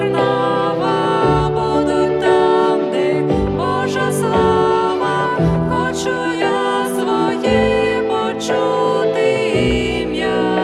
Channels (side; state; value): both; identical; correlation 1.00